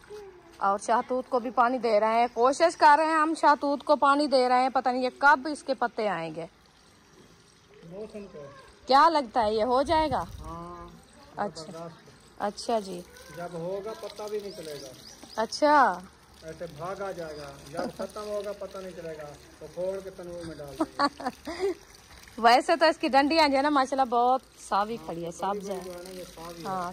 और शहतूत को भी पानी दे रहे हैं। कोशिश कर रहे हैं हम शहतूत को पानी दे रहे हैं, पता नहीं ये कब इसके पत्ते आएंगे। क्या लगता है ये हो जाएगा? हाँ, अच्छा अच्छा जी, जब होगा पता भी नहीं चलेगा। अच्छा ऐसे भाग आ जाएगा, जब खत्म होगा पता नहीं चलेगा तो फोड़ के तनूर में डाल देंगे। वैसे तो इसकी डंडियां जो है ना माशाल्लाह बहुत सावी खड़ी है, सब्ज है। हाँ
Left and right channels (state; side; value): identical; both; correlation 1.00